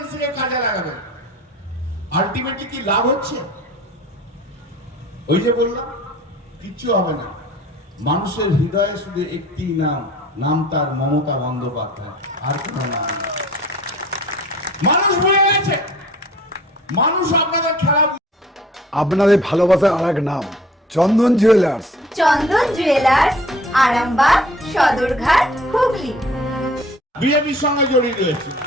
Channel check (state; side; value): normal; both; correlation 0.50